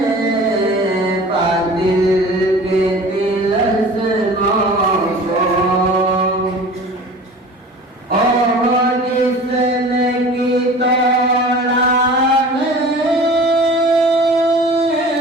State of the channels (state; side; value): normal; both; correlation 0.41